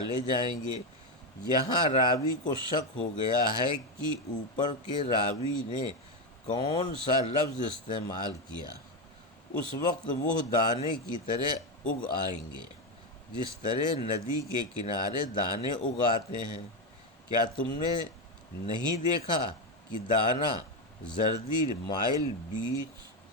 جائیں گے۔ یہاں راوی کو شک ہو گیا ہے کہ اوپر کے راوی نے کون سا لفظ استعمال کیا۔ اس وقت وہ دانے کی طرح اگ آئیں گے، جس طرح ندی کے کنارے دانے اگاتے ہیں۔ کیا تم نے نہیں دیکھا کہ دانہ زردی مائل بیچ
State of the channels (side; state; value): both; normal; correlation 0.10